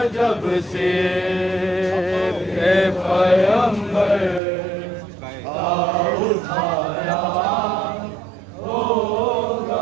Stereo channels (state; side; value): drops out; left; at 4.4 s